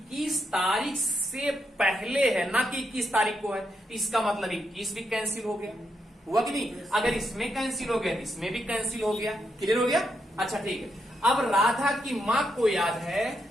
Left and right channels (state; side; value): normal; both; correlation 0.81